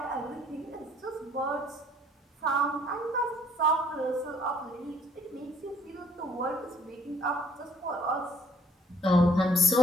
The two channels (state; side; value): normal; both; correlation 0.61